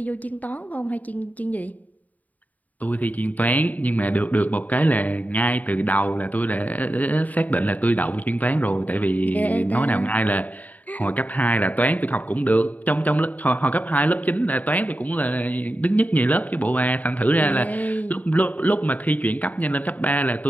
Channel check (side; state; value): right; late; 0.075 ms